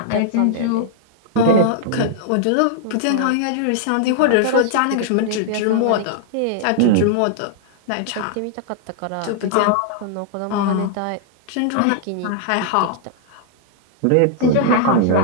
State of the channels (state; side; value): different; both; correlation -0.01